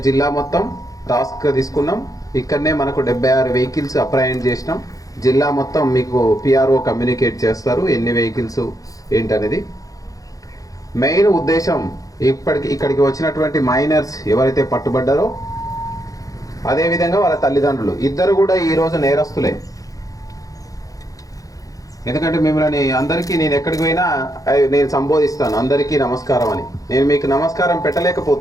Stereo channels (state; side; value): late; right; 0.17 ms